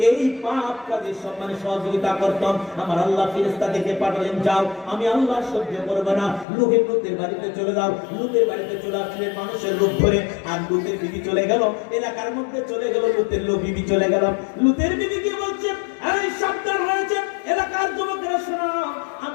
এই পাপ কাজের সম্মানে সহযোগিতা করতাম। আমার আল্লাহ ফেরেশতা দেখে পাঠালেন, যাও আমি আল্লাহ সহ্য করব না, লুতের বাড়িতে চলে যাও। লুতের বাড়িতে চলে আসলেন মানুষের রূপ ধরে, আর লুতের বিবি চলে গেল, এলাকার মধ্যে চলে গেল, লুতের বিবি চলে গেল। লুতের বিবি কি বলছে, এই সাবধান হয়েছে এলাকার যুবকেরা, শোনো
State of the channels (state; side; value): drops out; right; at 6.5 s